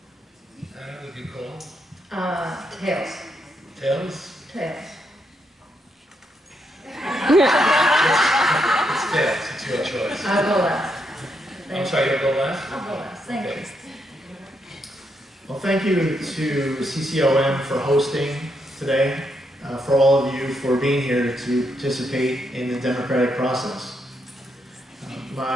Anna, would you call? Tails. Tails? Tails. It's tails. It's your choice. I'll go last. I'm sorry, you'll go last? I'll go last. Thank Okay. you. Well, thank you to CCOM for hosting today, for all of you for being here to participate in the democratic process.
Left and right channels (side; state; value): both; normal; correlation 0.79